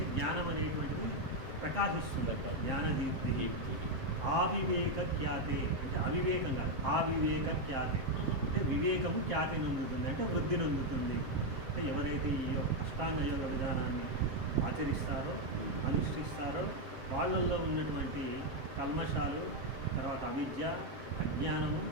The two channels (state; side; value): late; left; 7.4 ms